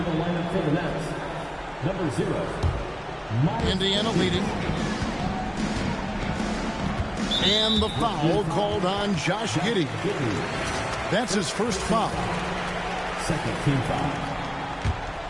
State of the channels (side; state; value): both; identical; correlation 1.00